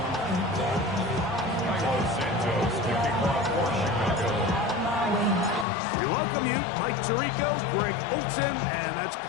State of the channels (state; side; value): drops out; right; at 5.7 s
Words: We welcome you, Mike Tirico, Greg Olson, and that's